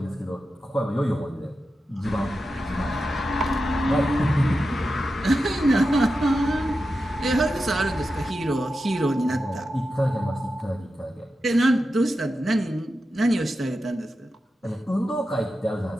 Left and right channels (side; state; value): both; normal; correlation 0.90